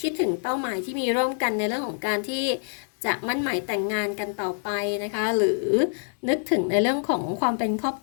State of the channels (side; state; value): right; silent; 61 dB below the other